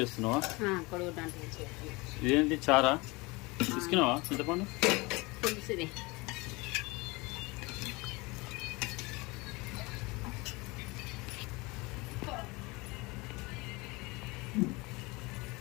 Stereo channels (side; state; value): right; quieter; 24.7 dB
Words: చేస్తున్నావా? కొడుగుడ్డ అంటు పులుసు. ఇదేంటి చారా తీసుకున్నావా? చింతపండు పులుసు ఇది.